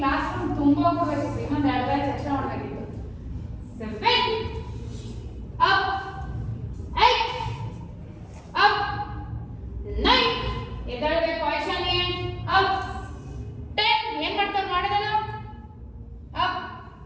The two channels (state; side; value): identical; both; correlation 1.00